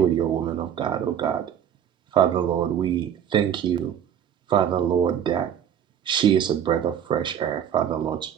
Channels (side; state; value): left; quieter; 9.2 dB